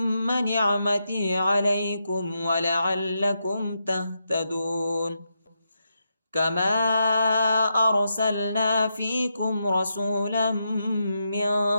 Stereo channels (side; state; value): both; inverted; correlation -0.84